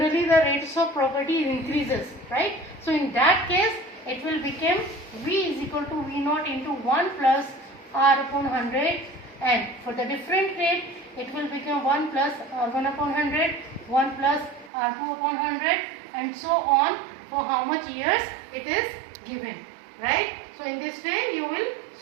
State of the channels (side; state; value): left; drops out; at 14.7 s